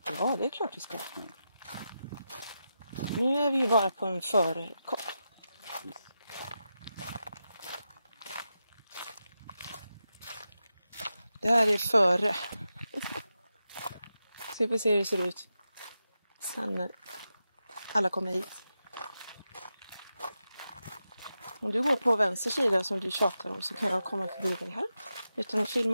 Ja, det är klart vi ska. Nu är vi ju bara på en förkopp. Det här är före. Ska vi se hur det ser ut sen när alla kommer hit. Om du går på vänster sida som du tjatar om så kan jag komma förbi dig här. Utan att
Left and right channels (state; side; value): inverted; both; correlation -0.89